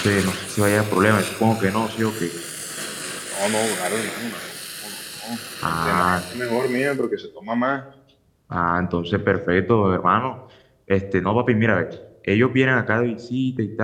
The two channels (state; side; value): identical; both; correlation 1.00